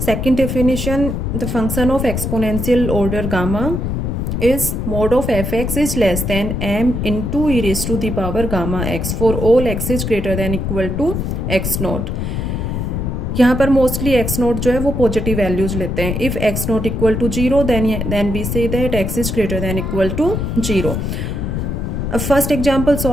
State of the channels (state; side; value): noise; left; rumble, 2 dB below the sound